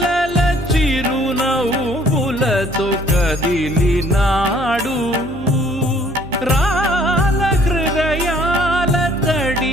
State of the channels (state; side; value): normal; both; correlation 0.60